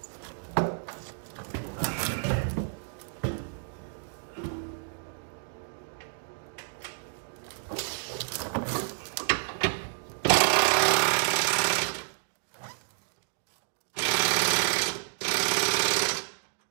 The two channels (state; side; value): silent; left; digital silence